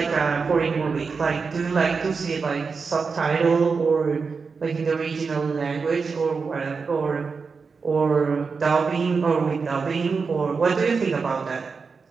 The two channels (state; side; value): quieter; left; 5.0 dB